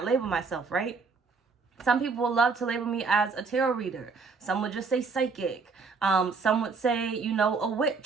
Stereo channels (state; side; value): quieter; left; 4.7 dB